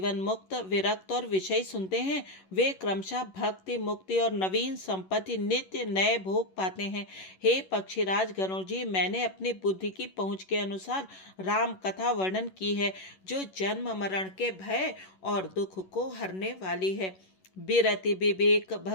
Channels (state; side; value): late; right; 11 ms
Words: मुक्त विरक्त और विषय सुनते हैं, वे क्रमशः भक्ति मुक्ति और नवीन संपत्ति नित्य नए भोग पाते हैं। हे पक्षीराज गरुड़ जी, मैंने अपनी बुद्धि की पहुँच के अनुसार राम कथा वर्णन की है, जो जन्म मरण के भय और दुख को हरने वाली है। बिरति विवेक